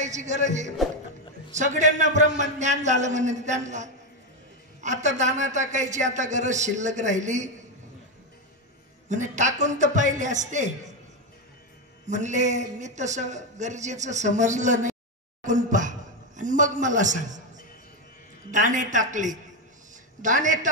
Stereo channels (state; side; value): normal; both; correlation 0.08